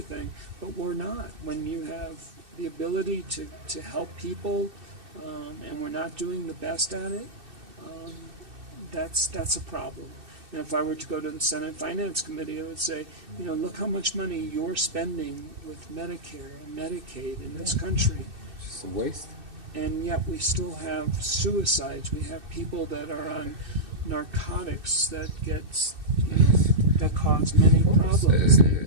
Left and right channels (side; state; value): left; late; 2.6 ms